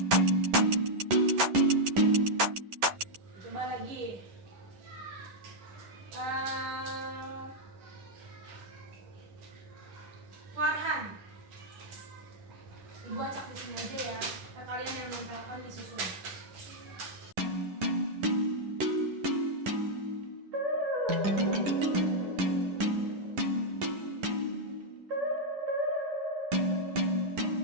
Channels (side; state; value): left; late; 10 ms